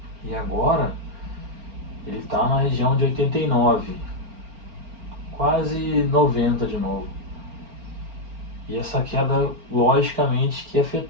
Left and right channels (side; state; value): left; late; 4.4 ms